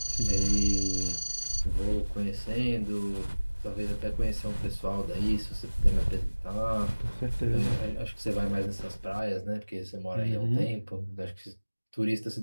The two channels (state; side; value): inverted; both; correlation -1.00